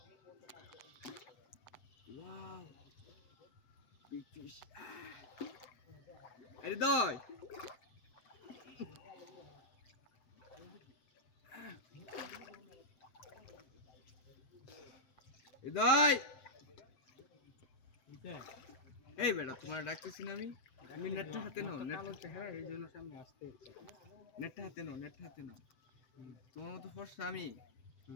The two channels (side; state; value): right; late; 7.8 ms